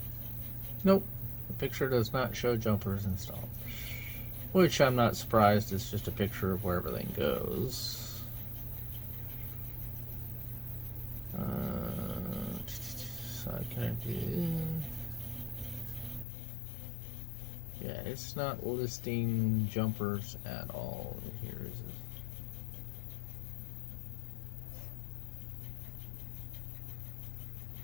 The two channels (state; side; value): drops out; right; at 16.2 s